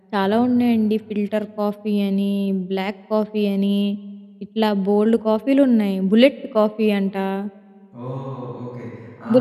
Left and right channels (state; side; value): identical; both; correlation 1.00